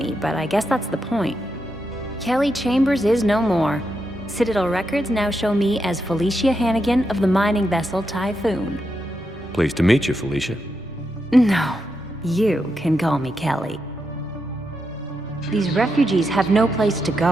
but I guess that's the point. Kelly Chambers is no more. Citadel records now show me as Felicia Hannigan of the mining vessel Typhoon. Pleased to meet you, Felicia. No, you can call me Kelly. These refugees have no place to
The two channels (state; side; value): normal; both; correlation 0.84